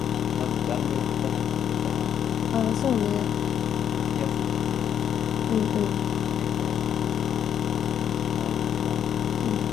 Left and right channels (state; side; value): quieter; right; 9.0 dB